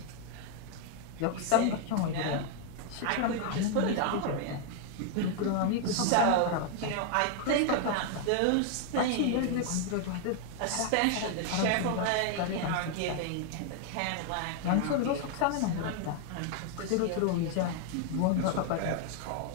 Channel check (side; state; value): both; different; correlation 0.00